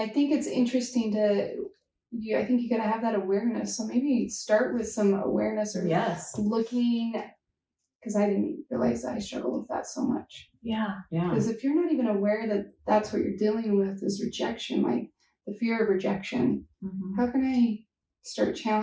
think it's interesting I think you gotta have that awareness. So maybe start with some awareness or looking, because I didn't realize that I struggle with that so much. Yeah. Because if you're not even aware that that's what you're dealing with is rejection, like the fear of rejection, how can I start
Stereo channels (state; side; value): identical; both; correlation 1.00